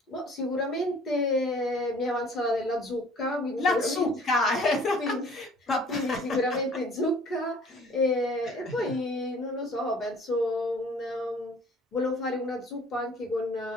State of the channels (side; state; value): both; normal; correlation 0.52